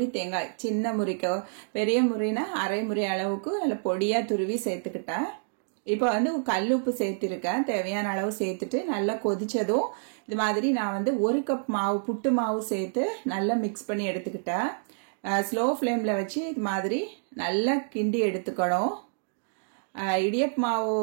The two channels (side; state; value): left; silent; digital silence